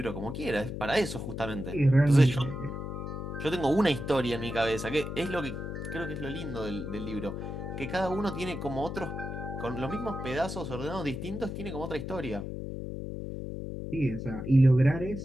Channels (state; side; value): noise; left; hum, 6 dB below the sound